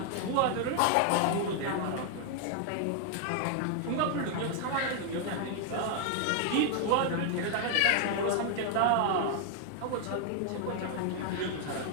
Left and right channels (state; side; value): different; both; correlation 0.00